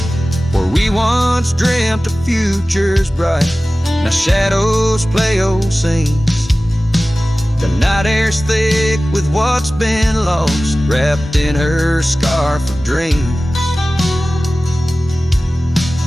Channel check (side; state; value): both; normal; correlation 0.97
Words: Where we once dreamt of futures bright, now shadows play old scenes. The night air's thick with what's been lost, wrapped in her scarf of dreams.